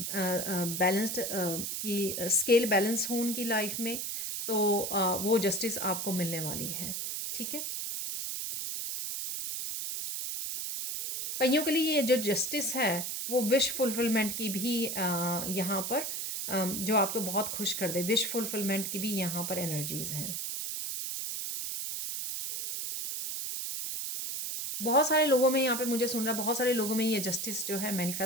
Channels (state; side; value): noise; right; hiss, 3 dB below the sound